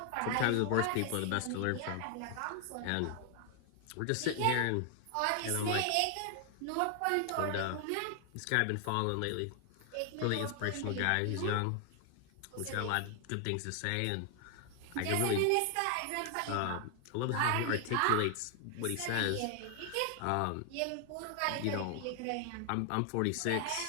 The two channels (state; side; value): different; both; correlation 0.00